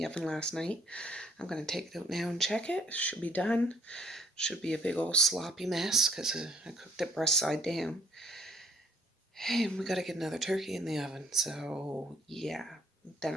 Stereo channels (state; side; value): normal; both; correlation 0.61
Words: oven last night. I'm going to take it out now and check it. Should be done. Should be a big old sloppy mess because I cooked it breast side down. And we got to get another turkey in the oven. So, yeah. Then